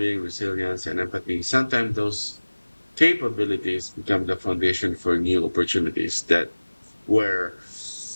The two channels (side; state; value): both; inverted; correlation -1.00